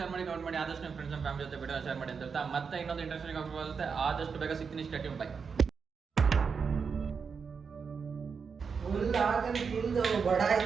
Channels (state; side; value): quieter; left; 5.8 dB